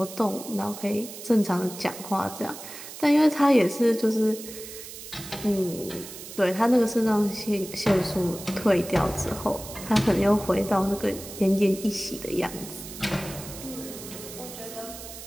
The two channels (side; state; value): right; noise; hiss, 13 dB below the sound